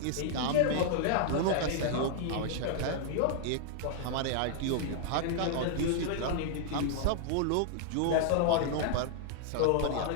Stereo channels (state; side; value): different; both; correlation 0.00